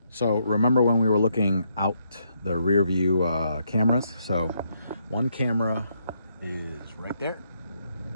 So remember when we were looking out the rear view cameras? So one camera is right there,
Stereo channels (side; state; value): both; inverted; correlation -0.76